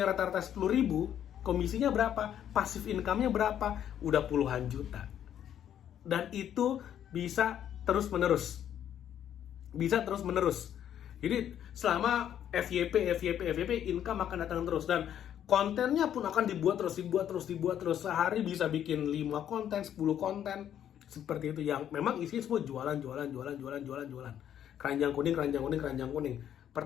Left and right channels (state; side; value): quieter; right; 10.1 dB